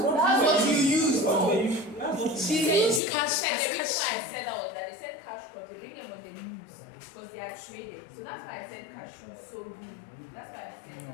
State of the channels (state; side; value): drops out; right; at 3.0 s